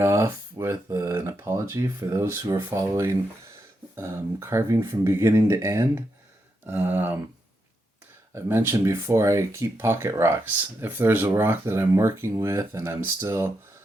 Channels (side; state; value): both; normal; correlation 0.83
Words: with an apology for those who are following carving from beginning to end. Um, I've mentioned before I keep pocket rocks. If there's a rock that I'm working with and